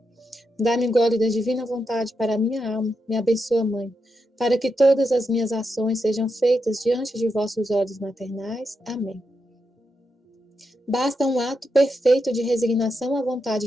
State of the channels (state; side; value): normal; both; correlation 0.84